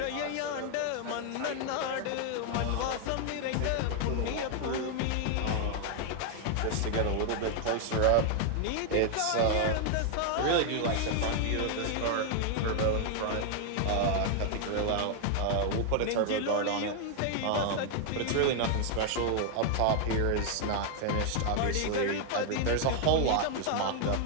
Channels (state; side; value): different; both; correlation 0.00